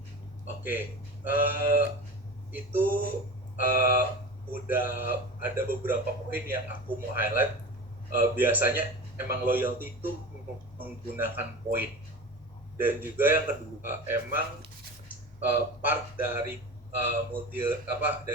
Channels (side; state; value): both; normal; correlation 0.32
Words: Oke. Itu udah ada beberapa poin yang aku mau highlight. Biasanya emang loyalty itu menggunakan poin, dan juga yang kedua emang part dari